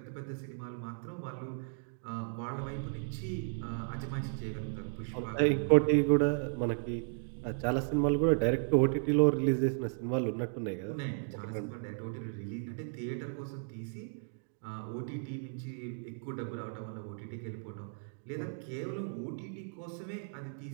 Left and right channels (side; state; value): left; silent; digital silence